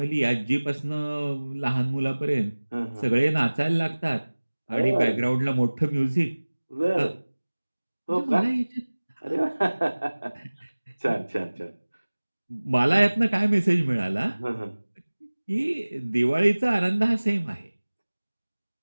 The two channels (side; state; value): both; inverted; correlation -1.00